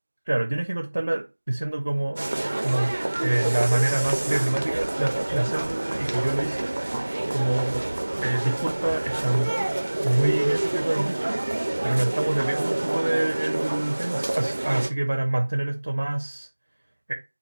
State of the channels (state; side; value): inverted; both; correlation -1.00